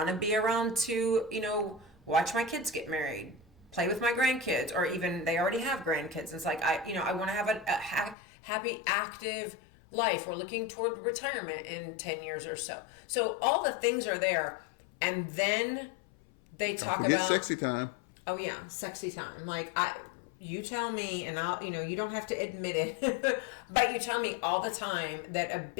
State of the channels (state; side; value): drops out; right; at 8.2 s